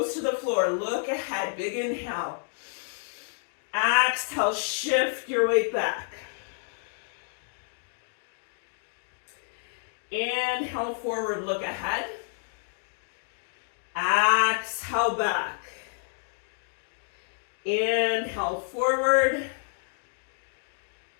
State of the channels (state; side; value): silent; right; digital silence